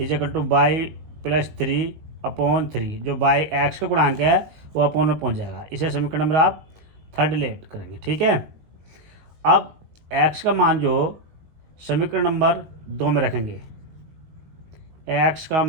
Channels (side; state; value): left; late; 19 ms